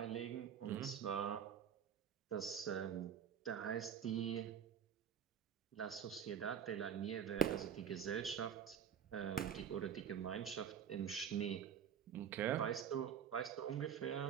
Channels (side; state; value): left; quieter; 8.5 dB